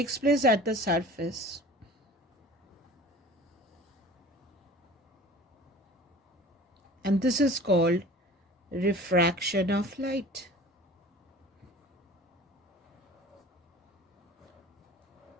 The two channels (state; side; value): normal; both; correlation 0.43